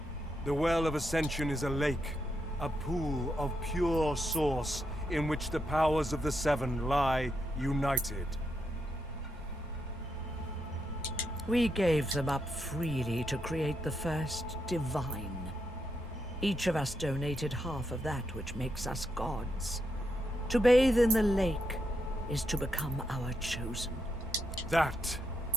The Well of Ascension is a lake, a pool of pure source in which the powers of the Seven lie united. We gave them up freely to create the first divine. Each of us donated half of that which makes us gods. To bathe in the lake is to become our chosen. That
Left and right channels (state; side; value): normal; both; correlation 0.82